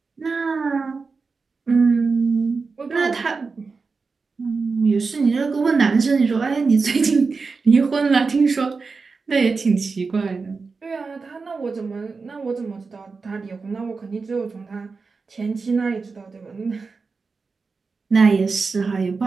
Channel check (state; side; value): quieter; left; 4.5 dB